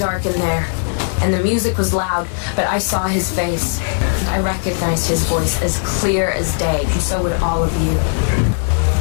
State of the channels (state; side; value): silent; right; digital silence